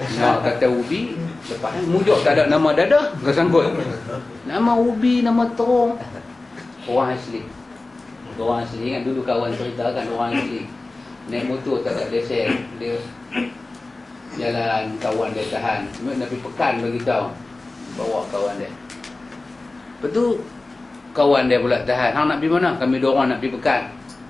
Nak kata ubi, lepas mujuk tak ada nama dadah, kau sangkut. Nama ubi, nama terung. Orang asli. Orang asli kan, dulu kawan ceritakan orang asli. Naik motor tak ada lesen, dia jalan, kawan dia tahan. Nak pergi Pekan bagi tahu. Bawa kawan dia. Lepas tu kawan dia pula tahan. Hang nak pergi mana? Kami dua orang nak pergi Pekan.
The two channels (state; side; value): quieter; right; 3.2 dB